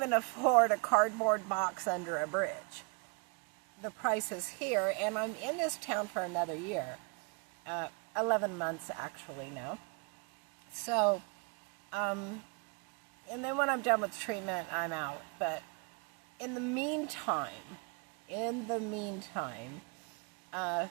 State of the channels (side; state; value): left; quieter; 33.2 dB